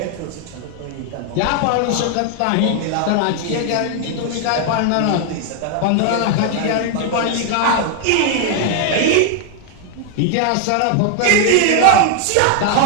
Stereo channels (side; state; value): both; different; correlation 0.00